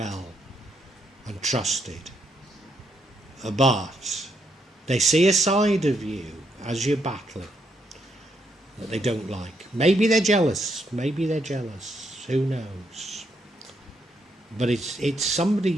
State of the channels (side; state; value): both; normal; correlation 0.77